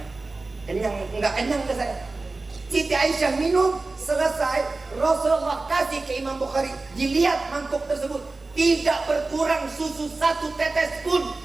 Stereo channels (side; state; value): left; quieter; 3.5 dB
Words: Kenyang, nggak kenyang ke saya. Siti Aisyah minum, selesai, Rasulullah kasih ke Imam Bukhari. Dilihat mangkok tersebut, tidak berkurang susu 1 tetes pun